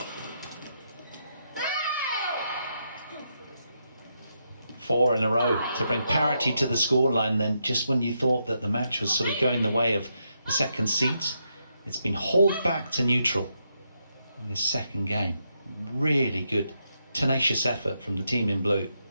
Four in a row to bring parity to the scoreline then, just when you thought that the match was sort of going the way of the second seeds. It's been hauled back to neutral in this second game. Really good, tenacious effort from the team in blue.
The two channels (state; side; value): inverted; both; correlation -0.81